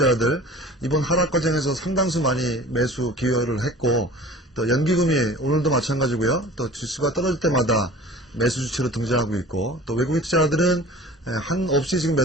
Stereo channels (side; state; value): both; normal; correlation 0.42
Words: 이번 하락 과정에서 상당수 많이 매수 기여를 했고 또 연기금이 오늘도 마찬가지고요. 또 지수가 떨어질 때마다 매수 주체로 등장하고 있고 또 외국인 투자자들은 한없이 지금